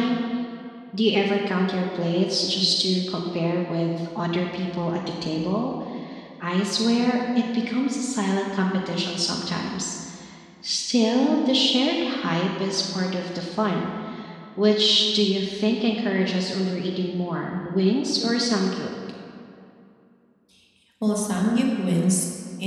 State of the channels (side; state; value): both; identical; correlation 1.00